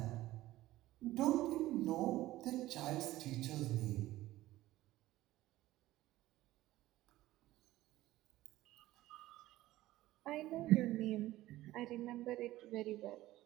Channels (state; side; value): quieter; left; 16.2 dB